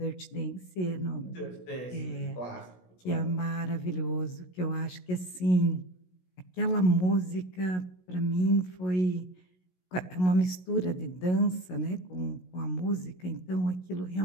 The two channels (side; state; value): right; late; 16 ms